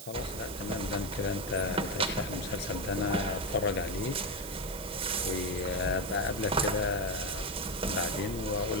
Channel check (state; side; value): noise; right; hiss, 12 dB below the sound